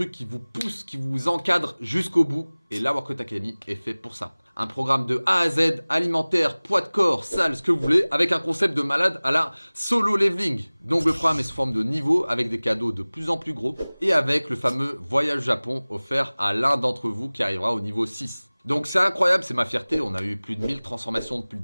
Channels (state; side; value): inverted; both; correlation -1.00